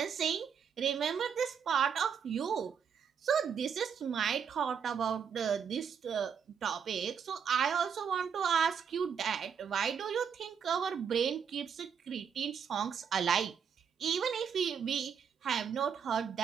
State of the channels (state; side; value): quieter; left; 7.1 dB